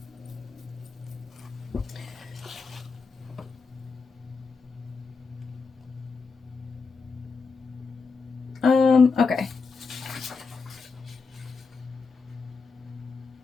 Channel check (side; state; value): right; quieter; 4.6 dB